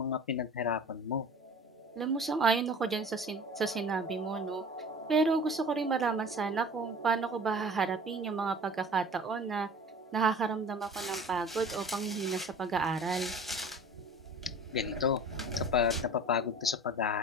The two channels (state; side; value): normal; both; correlation 0.42